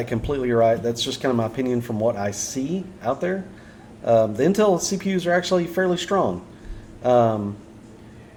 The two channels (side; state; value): both; identical; correlation 1.00